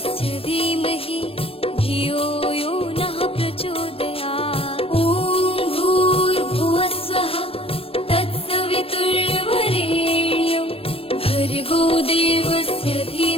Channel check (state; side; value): late; right; 0.27 ms